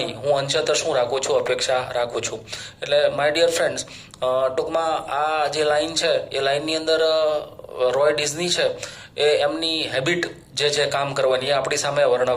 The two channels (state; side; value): identical; both; correlation 1.00